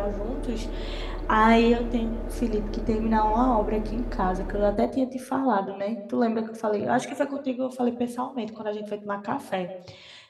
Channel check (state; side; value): identical; both; correlation 1.00